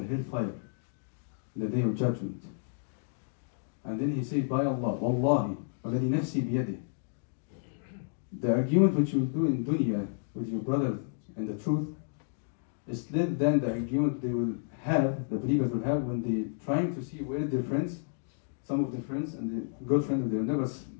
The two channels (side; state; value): right; silent; digital silence